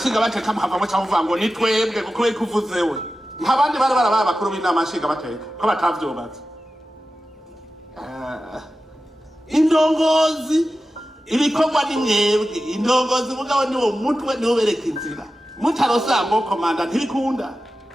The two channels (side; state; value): both; normal; correlation 0.93